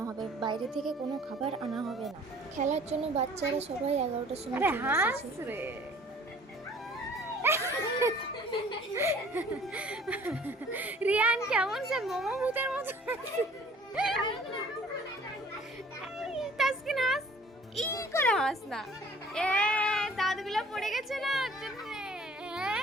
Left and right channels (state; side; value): normal; both; correlation 0.52